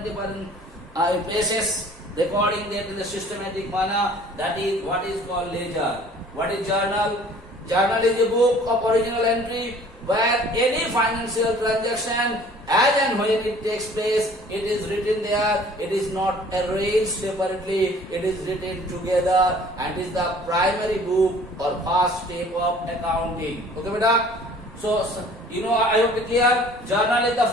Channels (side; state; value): both; normal; correlation 0.52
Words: places, recording that in the systematic manner. That is what is called ledger. What is journal? Journal is a book of original entry where any financial transaction, as and when it takes place, it is written there. It is not arranged separately. It is written together, and is the primary book or first step of accounting. Okay, beta? So, I hope it clear. Journal is the